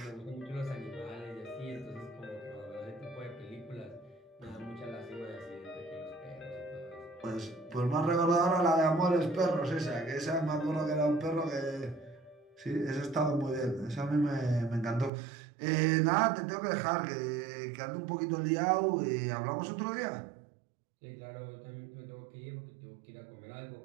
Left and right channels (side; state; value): left; drops out; at 15.1 s